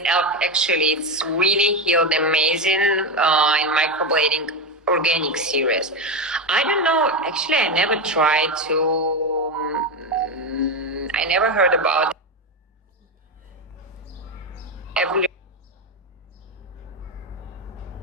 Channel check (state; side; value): normal; both; correlation 0.14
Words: actually, it's really healed amazing in microblading organic series. I don't know, actually, I never tried to, I never heard about every